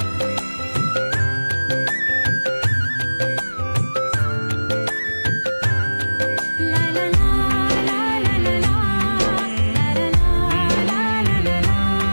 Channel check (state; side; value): inverted; both; correlation -1.00